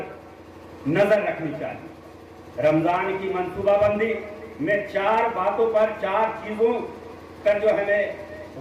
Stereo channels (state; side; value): identical; both; correlation 1.00